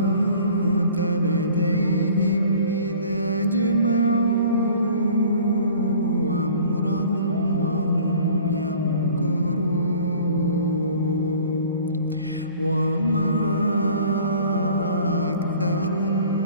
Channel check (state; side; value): inverted; both; correlation -0.48